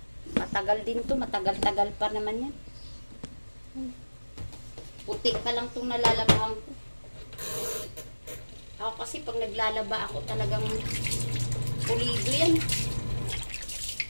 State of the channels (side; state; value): both; inverted; correlation -1.00